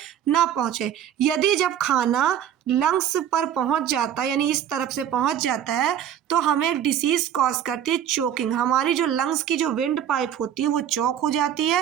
ना पहुंचे। यदि जब खाना लंग्स पर पहुंच जाता है, यानी इस तरफ से पहुंच जाता है, तो हमें एक डिसीज कॉज करती है चोकिंग। हमारी जो लंग्स की जो विंड पाइप होती है वो चोक हो जाती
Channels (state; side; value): quieter; left; 10.0 dB